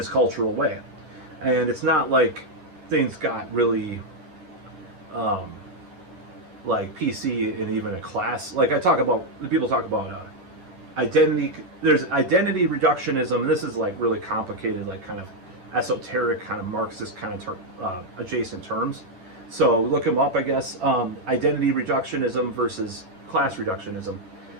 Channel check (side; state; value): left; late; 11 ms